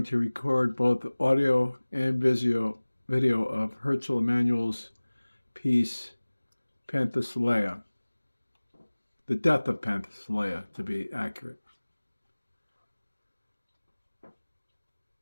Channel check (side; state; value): both; inverted; correlation -1.00